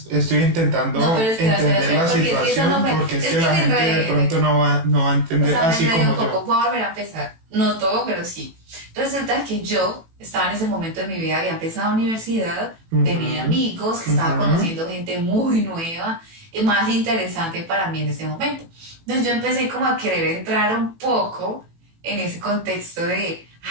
estoy No, intentando pero entender la porque es que eso no situación fue, porque es es que que la me gente de enredé. pronto no va a O entender sea, me así enredé un como poco, yo. voy a volver a empezar. No todo, pero sí. Resulta que yo estaba en ese momento de mi vida, había empezado universidad, tenía Ujú, amigos, estaba ujú. conociendo gente muy nueva y más interesante para mí en ese momento. Entonces yo empecé como a querer entrar un poco en ese contexto de,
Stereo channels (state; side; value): late; left; 18 ms